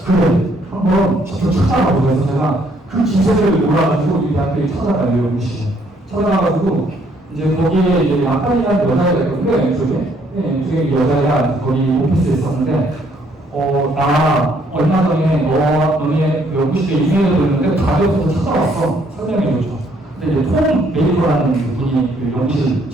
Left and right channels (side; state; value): both; normal; correlation 0.67